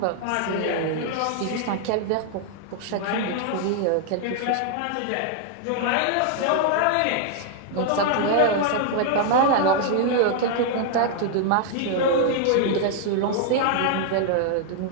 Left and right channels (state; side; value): different; both; correlation 0.00